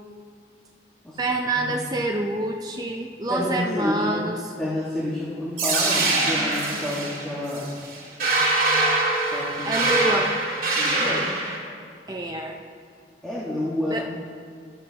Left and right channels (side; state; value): both; normal; correlation 0.24